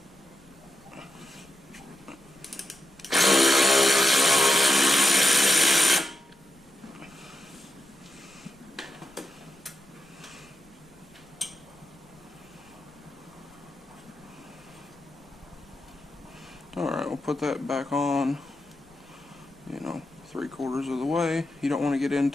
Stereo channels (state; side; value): noise; left; rumble, 30 dB below the sound